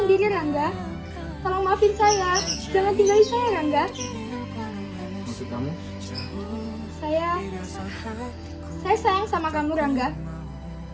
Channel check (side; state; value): both; identical; correlation 1.00